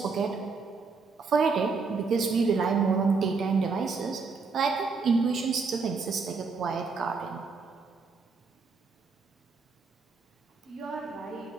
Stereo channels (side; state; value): left; quieter; 4.6 dB